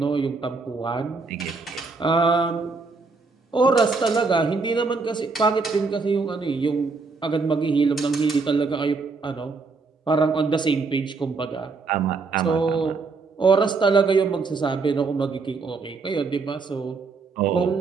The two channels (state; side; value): quieter; left; 4.3 dB